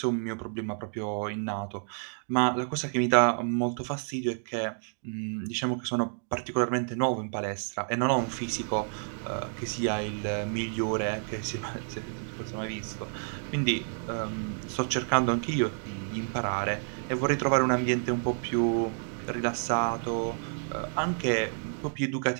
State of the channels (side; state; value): left; silent; 58 dB below the other